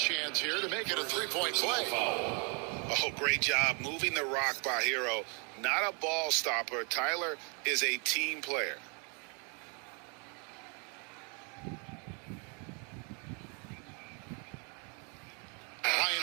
here to make it a 3-point play. Oh, great job moving the rock by Hero. Not a ball stopper. Tyler is a team player. Ryan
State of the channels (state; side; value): quieter; left; 35.8 dB